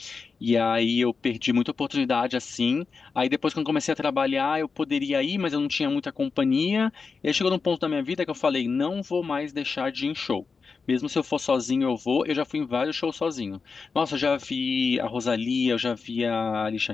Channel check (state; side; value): quieter; right; 4.9 dB